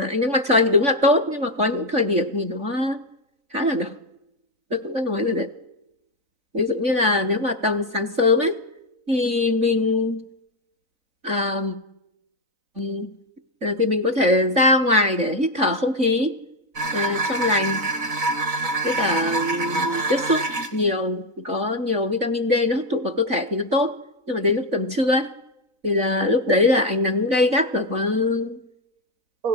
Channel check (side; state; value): left; late; 4.0 ms